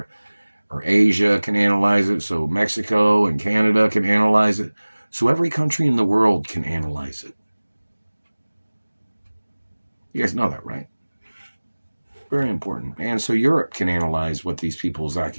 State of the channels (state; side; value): inverted; both; correlation -1.00